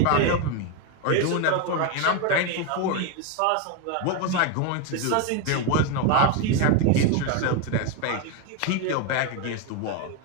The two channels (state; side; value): different; both; correlation 0.02